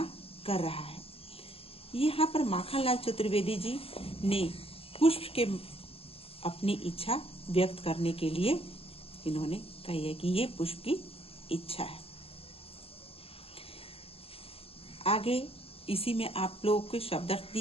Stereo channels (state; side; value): late; right; 0.28 ms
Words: कर रहा है। यहाँ पर माखनलाल चतुर्वेदी जी ने पुष्प के अपनी इच्छा व्यक्त करने के लिए इन्होंने कही है कि ये पुष्प की इच्छा है। आगे इसी में आप लोगों के शब्दार्थ